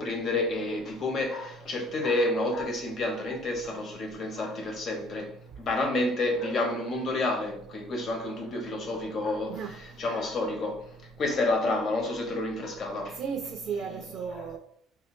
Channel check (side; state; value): both; normal; correlation 0.59